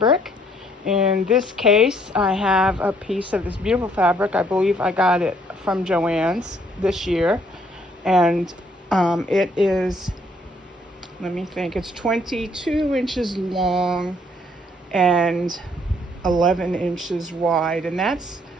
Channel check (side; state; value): both; normal; correlation 0.65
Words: In this case, I have a piece of this beautiful fabric. I believe I got it from Joann's this year. And it is, let me think, it's 22 inches long and 11 inches wide. And that's